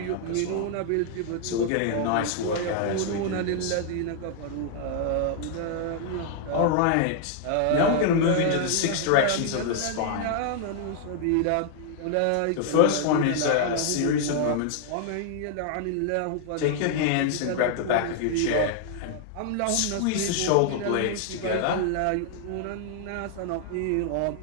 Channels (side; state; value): both; different; correlation 0.00